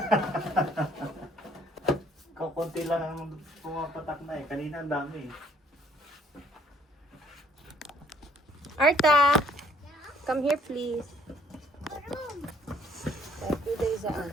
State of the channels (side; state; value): both; normal; correlation 0.62